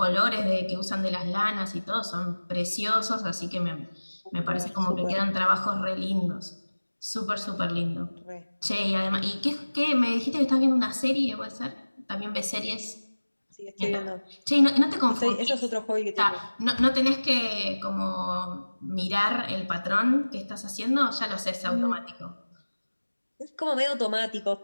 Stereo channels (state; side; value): inverted; both; correlation -1.00